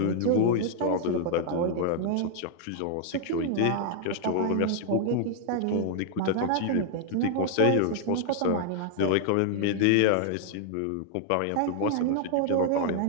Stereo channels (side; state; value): both; different; correlation 0.00